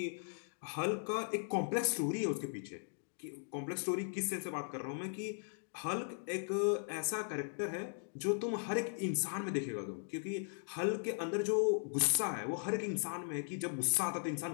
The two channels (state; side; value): silent; right; digital silence